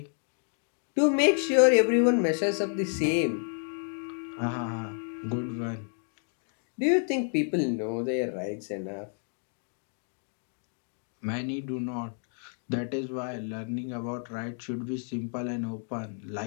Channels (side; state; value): right; silent; 56 dB below the other